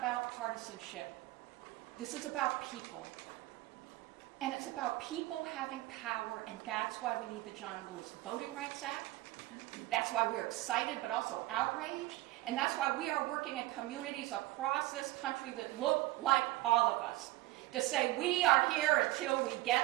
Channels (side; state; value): left; quieter; 18.3 dB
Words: partisanship. This is about people. And it's about people having power, and that's why we need the John Lewis Voting Rights Act. That's why we are excited but also outraged. And that's why we are working in communities across this country that look like all of us to say we are here until we